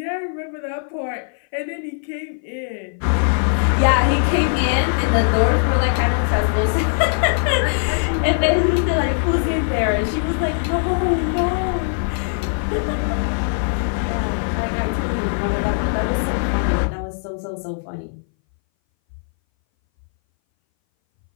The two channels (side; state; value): right; silent; 61 dB below the other